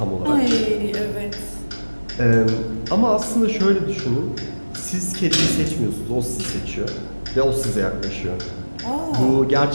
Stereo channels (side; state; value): both; inverted; correlation -1.00